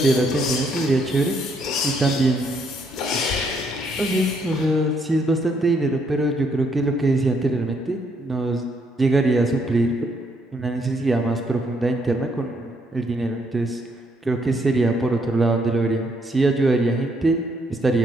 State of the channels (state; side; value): normal; both; correlation 0.72